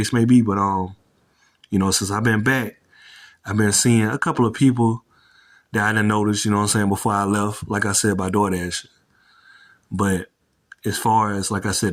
may be. But since I've been back, I've been seeing a couple of people that I didn't notice, you know what I'm saying, before I left, like I said, by DoorDash. But as far as, like I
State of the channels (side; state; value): both; identical; correlation 1.00